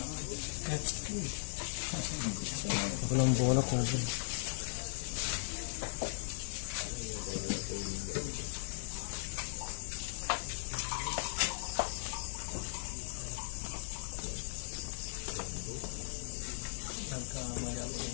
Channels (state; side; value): silent; right; digital silence